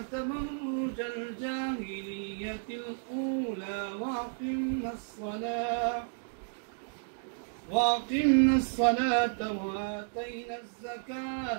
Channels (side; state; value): left; silent; digital silence